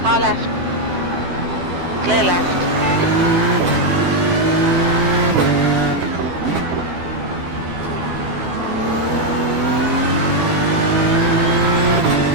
Car left. Clear left.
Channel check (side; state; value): left; late; 12 ms